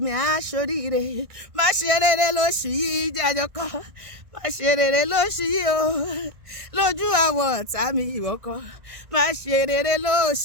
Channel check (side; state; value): left; late; 1.6 ms